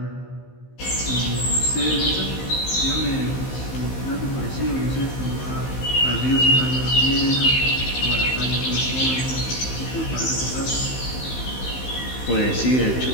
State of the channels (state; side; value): late; right; 15 ms